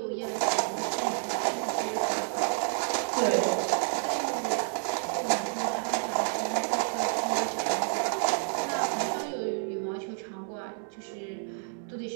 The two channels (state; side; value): silent; left; 58 dB below the other